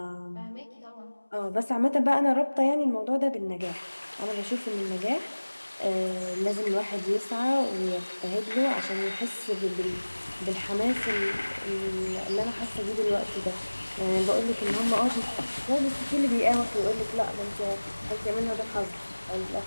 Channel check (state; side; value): inverted; both; correlation -1.00